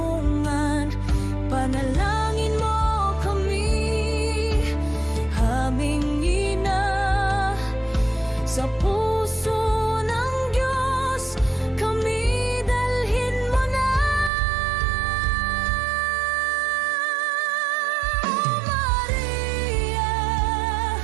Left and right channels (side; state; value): left; drops out; at 14.3 s